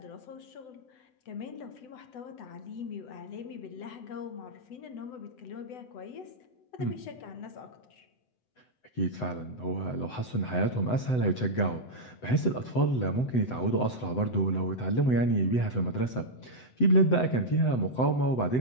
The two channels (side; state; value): right; late; 7.9 ms